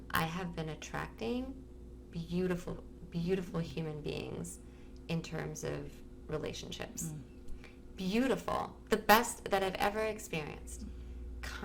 I have been attracting beautiful, beautiful human beings in terms of relationships. Beautiful. The best that I've ever experienced.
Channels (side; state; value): both; identical; correlation 1.00